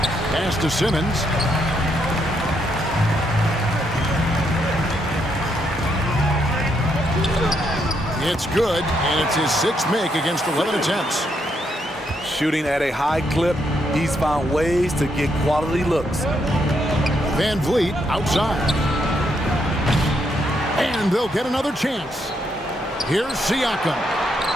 Pass to Simmons. It's good, and it's his 6th make against 11 attempts. Shooting at a high clip, he's found ways to get quality looks. Van Vliet outside. And they'll get another chance. Here's Siakam.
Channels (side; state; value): both; normal; correlation 0.77